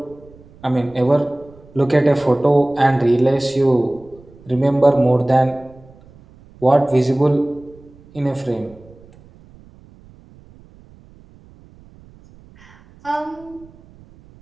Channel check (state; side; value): noise; right; rumble, 25 dB below the sound